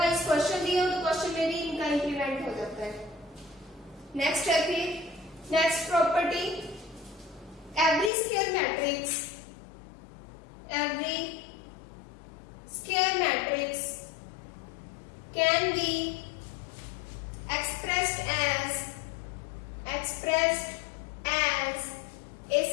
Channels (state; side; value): drops out; right; at 8.1 s